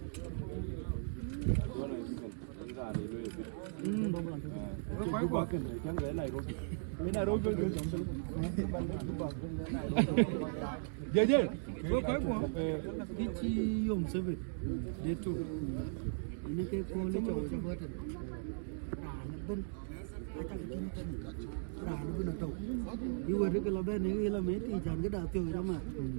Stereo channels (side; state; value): left; silent; digital silence